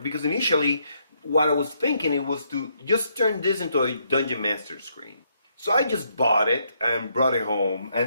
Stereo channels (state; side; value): inverted; both; correlation -0.74